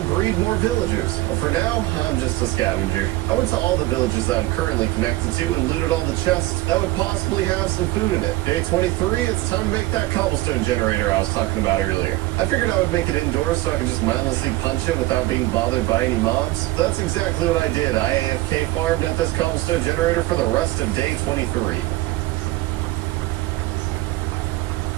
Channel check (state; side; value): quieter; left; 18.8 dB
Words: breed more villagers. But for now, I'm just a scavenger. I went to all the villages that I'm currently connected to and looted all the chests that would possibly have some food in it. Day 23, it's time to make that cobblestone generator I was talking about earlier. I figured I would make it indoors so I could just mindlessly punch it without being bothered by any mobs. So that's exactly what I did. I AFK farmed at this cobblestone generator for the rest of day 23.